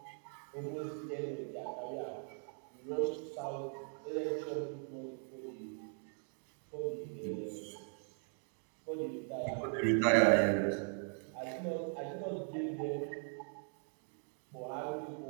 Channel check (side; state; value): left; silent; 51 dB below the other